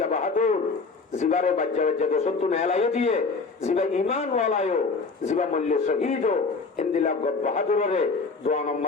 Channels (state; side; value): quieter; right; 4.3 dB